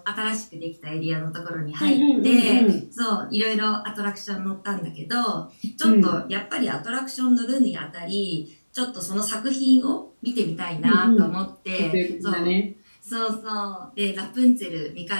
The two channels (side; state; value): both; inverted; correlation -1.00